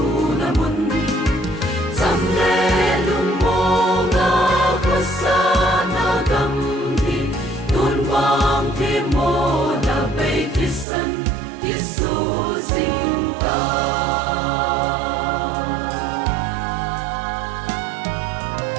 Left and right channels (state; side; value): drops out; left; at 10.9 s